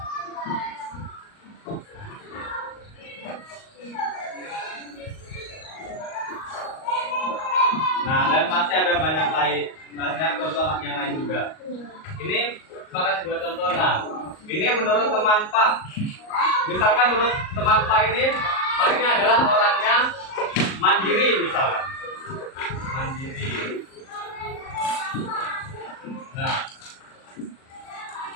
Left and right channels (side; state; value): right; late; 38 ms